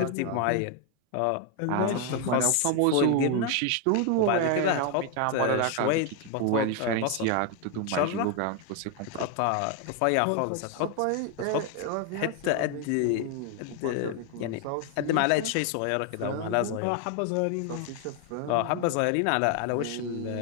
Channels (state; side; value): different; both; correlation 0.01